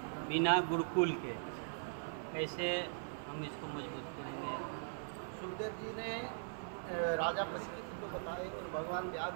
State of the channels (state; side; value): silent; left; digital silence